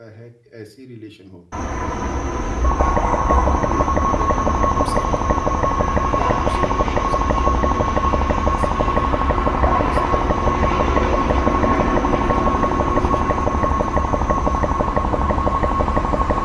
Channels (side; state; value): both; identical; correlation 1.00